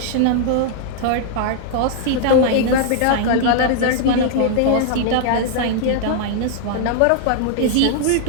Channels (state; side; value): different; both; correlation -0.01